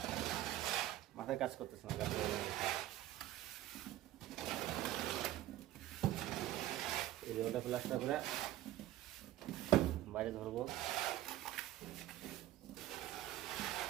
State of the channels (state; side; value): quieter; left; 14.5 dB